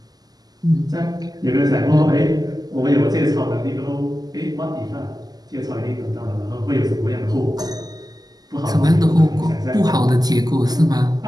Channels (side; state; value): left; late; 0.19 ms